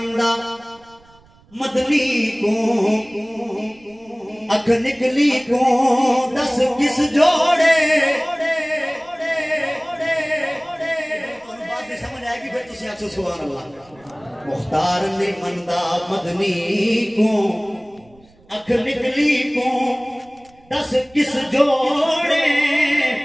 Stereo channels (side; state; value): right; noise; rumble, 29 dB below the sound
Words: مدنی کو اکھ نکلی کو دس کس جوڑے بات میں سمجھ آئے گی پھر تسی آکھ سبحان اللہ مختار نہیں مندہ مدنی کو اکھ نکلی کو دس کس جوڑے